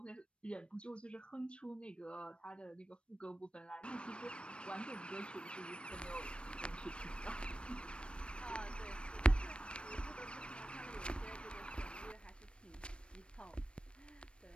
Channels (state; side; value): late; right; 0.057 ms